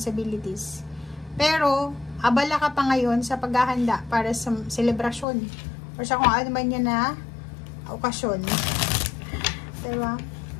Pero, abala ka pa ngayon sa paghahanda para sa selebrasyon. Or sa kung ano man yan na okasyon. Diba?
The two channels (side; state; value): right; drops out; at 5.2 s